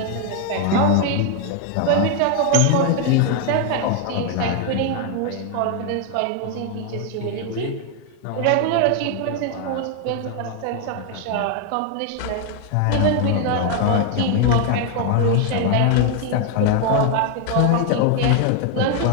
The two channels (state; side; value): different; both; correlation 0.01